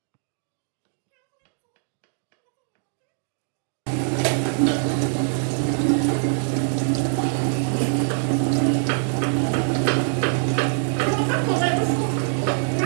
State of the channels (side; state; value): left; silent; digital silence